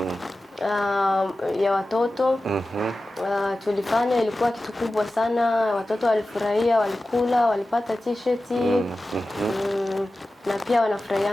Ya watoto. Tulifanya, ilikuwa kitu kubwa sana, watoto walifurahia, walikula, walipata t-shirt. Na pia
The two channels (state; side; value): normal; both; correlation 0.95